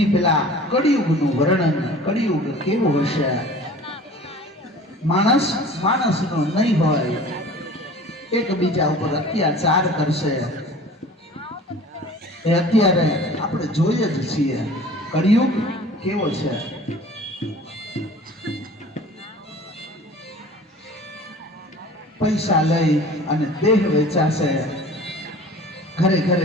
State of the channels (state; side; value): normal; both; correlation 0.44